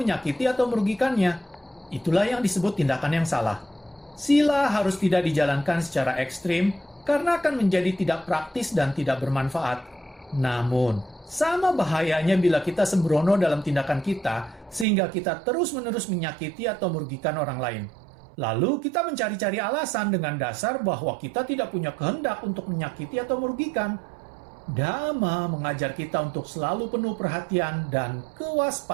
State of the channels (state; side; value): drops out; left; at 14.9 s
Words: atau merugikannya. Itulah yang disebut tindakan yang salah. Sila harus tidak dijalankan secara ekstrim, karena akan menjadi tidak praktis dan tidak bermanfaat. Namun, sama bahayanya bila kita sembrono dalam tindakan kita, sehingga kita terus-menerus menyakiti atau merugikan orang lain. Lalu kita mencari-cari alasan dengan dasar bahwa kita tidak punya kehendak untuk menyakiti atau merugikan. Dhamma mengajar kita untuk selalu penuh perhatian dan